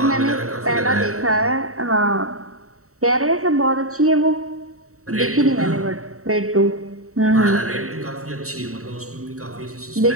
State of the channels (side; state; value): left; late; 0.64 ms